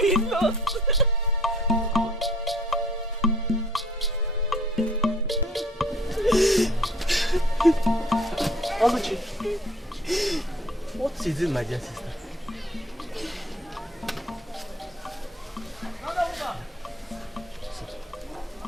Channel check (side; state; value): both; normal; correlation 0.55